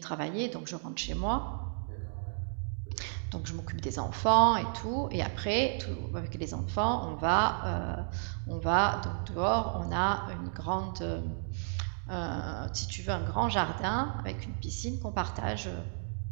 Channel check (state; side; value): silent; left; digital silence